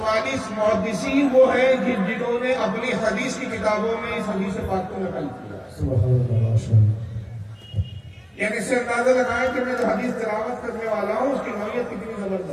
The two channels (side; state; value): both; identical; correlation 1.00